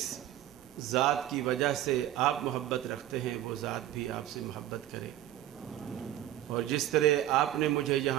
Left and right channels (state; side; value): quieter; left; 13.0 dB